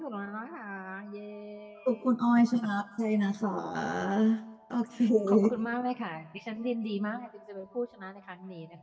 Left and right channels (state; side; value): identical; both; correlation 1.00